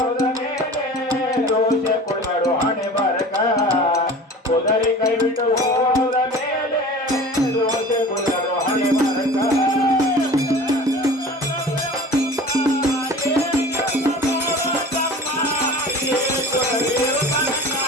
ಮೇಲೆ ದೋಷ ಕೊಡಬಾರೋ ಹಣೆ ಬಾರಕ ಕುದುರೆ ಕೈ ಬಿಟ್ಟು ಹೋದ ಮೇಲೆ ದೋಷ ಕೊಡಬಾರೋ ಹಣೆ ಬಾರಕ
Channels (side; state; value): both; normal; correlation 0.40